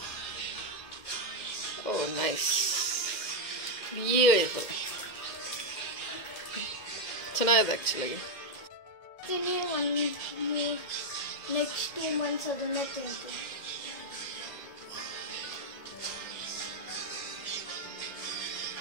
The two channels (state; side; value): late; right; 2.1 ms